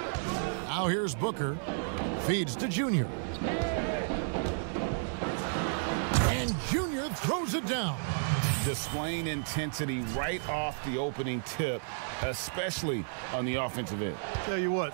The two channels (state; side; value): silent; left; 56 dB below the other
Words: Now here's Booker. Feeds to Junior. And Junior throws it down. Displaying intensity right off the opening tip, especially on the offensive end. Tell you what,